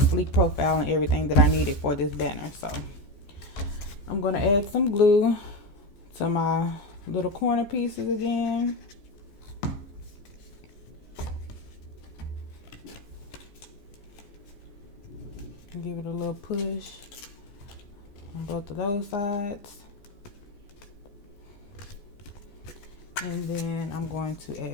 sleek profile and everything that I needed for this banner. So I'm going to add some glue to my little corner pieces again. Give it a little push on both of those sides. And then I'm going to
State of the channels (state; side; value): late; right; 14 ms